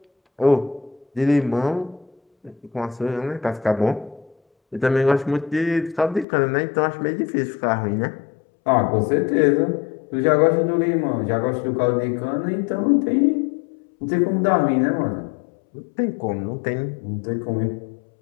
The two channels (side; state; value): right; drops out; at 6.2 s